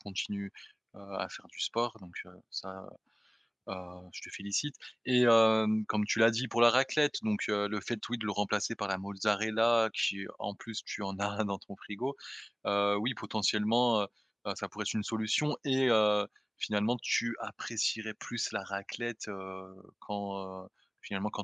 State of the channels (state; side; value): identical; both; correlation 1.00